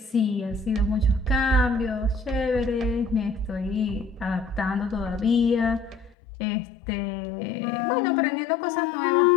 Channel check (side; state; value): right; drops out; at 6.2 s